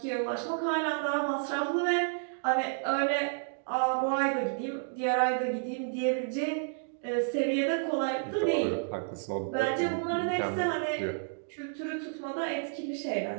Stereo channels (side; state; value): left; silent; digital silence